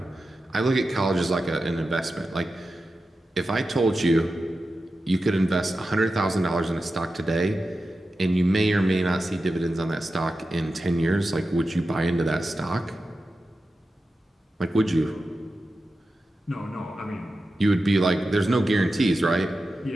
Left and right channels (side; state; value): both; normal; correlation 0.92